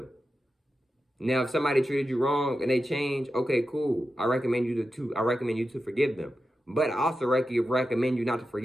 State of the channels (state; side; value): normal; both; correlation 0.90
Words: Now, if somebody treated you wrong and they change, okay, cool. I recommend you to forgive them. But I also recommend you not to